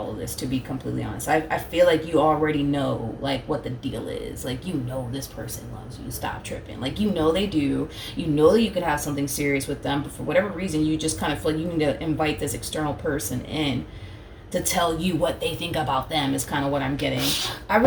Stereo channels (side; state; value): both; identical; correlation 1.00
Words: of this, to be completely honest. I feel like you already know, like, what the deal is. Like, you know this person loves you. Stop tripping. Like, you know they do. You know that you could have something serious with them, but for whatever reason, you just kind of feel like you need to invite this external person in to tell you what they think about them is kind of what I'm getting. I